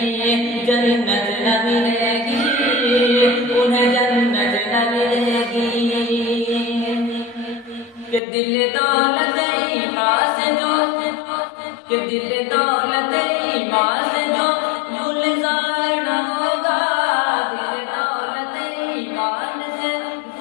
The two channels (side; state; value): right; drops out; at 8.2 s